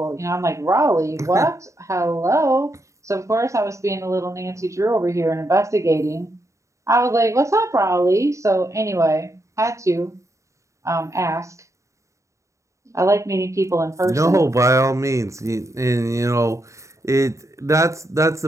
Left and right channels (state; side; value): late; left; 0.15 ms